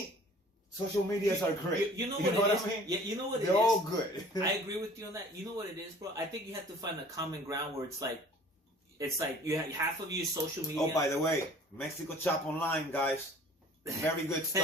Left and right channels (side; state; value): both; normal; correlation 0.49